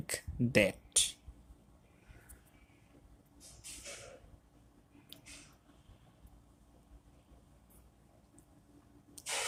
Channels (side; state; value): both; identical; correlation 1.00